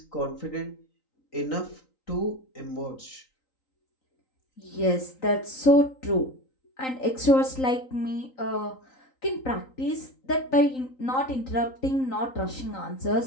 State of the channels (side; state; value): right; late; 3.9 ms